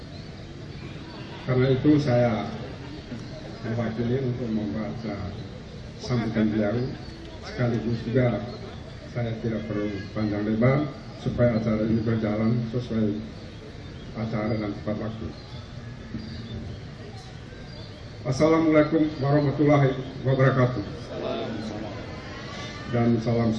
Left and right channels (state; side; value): identical; both; correlation 1.00